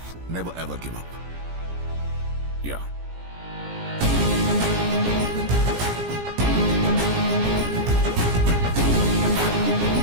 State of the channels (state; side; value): late; left; 17 ms